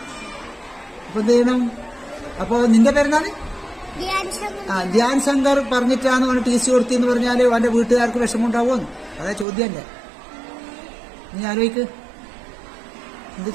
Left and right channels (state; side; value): drops out; left; at 9.5 s